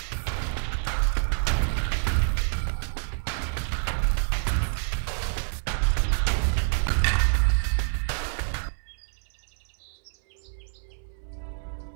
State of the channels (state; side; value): silent; left; 60 dB below the other